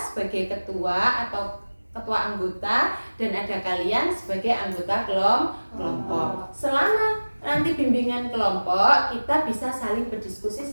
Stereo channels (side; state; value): both; inverted; correlation -1.00